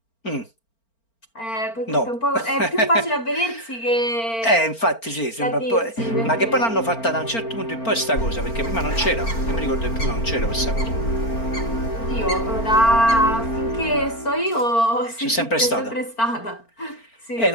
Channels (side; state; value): right; late; 4.4 ms